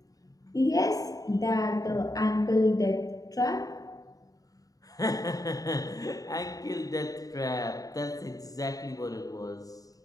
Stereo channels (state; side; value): late; right; 0.17 ms